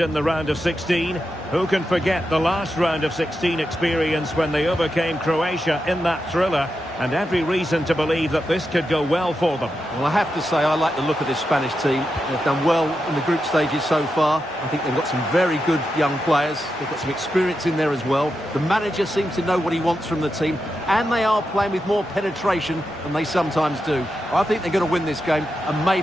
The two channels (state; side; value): normal; both; correlation 0.88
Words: in the round of 16. Who can forget the last round of 16 experience when they overcame Croatia in that thriller? And every reason to believe that this could go well for them. Well, I have to say I like the look of this Spanish team. They've done well in the group stages so far. I think they've got some very good young players. They've got some experience in there as well. The manager seems to know what he wants from the team, and they are playing with more penetration than they sometimes do. I think they're going to win this game and